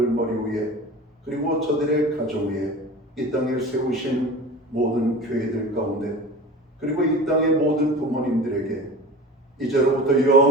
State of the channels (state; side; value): normal; both; correlation 0.35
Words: 머리 위에 그리고 저들의 가정 위에 이 땅에 세우신 모든 교회들 가운데 그리고 이 땅의 모든 부모님들에게 이제로부터